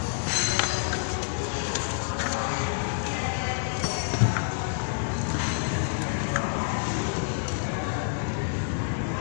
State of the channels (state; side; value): silent; right; digital silence